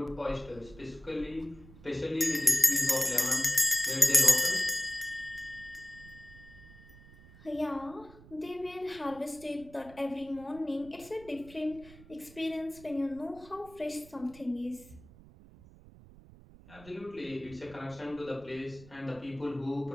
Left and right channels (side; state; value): right; noise; rumble, 21 dB below the sound